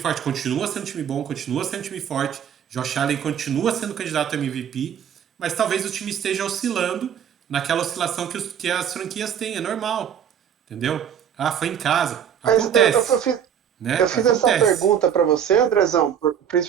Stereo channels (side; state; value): left; quieter; 8.7 dB